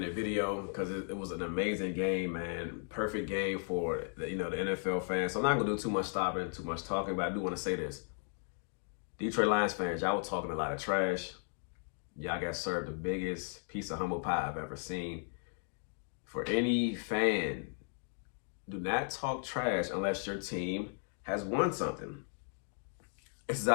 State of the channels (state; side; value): silent; right; 54 dB below the other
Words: video because it was an amazing game, man. Perfect game for the NFL fans. So I'm not gonna do too much stopping, too much talking, but I do want to say this. Detroit Lions fans, y'all were talking a lot of trash. Y'all got served the biggest piece of humble pie I've ever seen. For any fan, do not talk trash unless your team has won something. It's